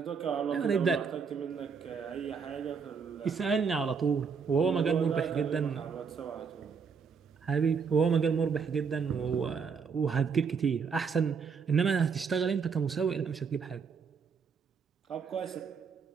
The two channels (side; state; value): left; quieter; 5.9 dB